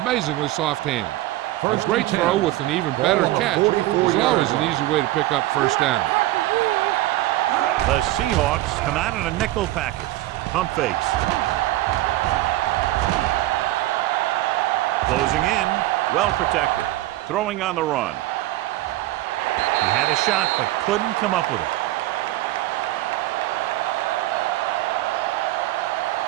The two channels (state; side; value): quieter; left; 16.6 dB